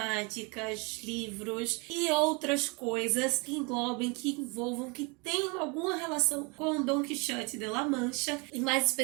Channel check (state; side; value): quieter; left; 30.4 dB